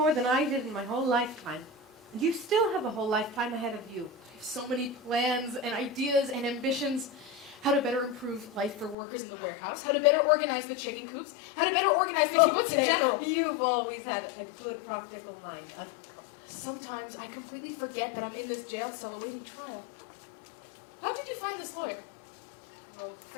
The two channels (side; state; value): right; drops out; at 9.0 s